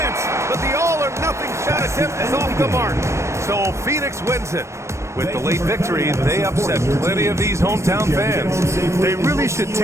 but the all-or-nothing shot attempt is off the mark. So Phoenix wins it. With the late victory, they upset plenty of these hometown fans. They really should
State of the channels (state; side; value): late; left; 0.13 ms